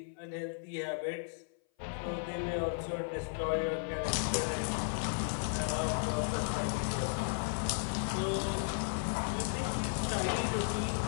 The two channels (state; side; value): silent; right; 54 dB below the other